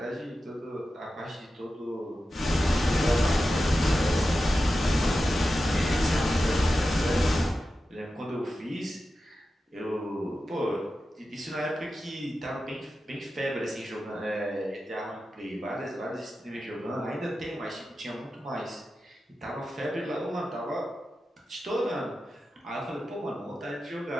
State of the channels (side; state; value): both; normal; correlation 0.92